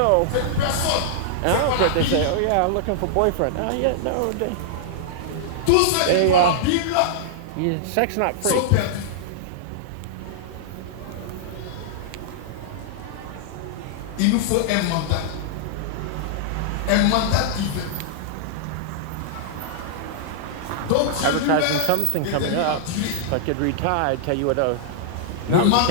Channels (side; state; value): both; different; correlation -0.01